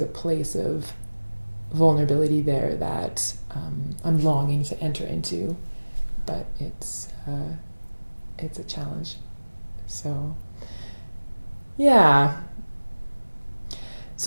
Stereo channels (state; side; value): inverted; both; correlation -1.00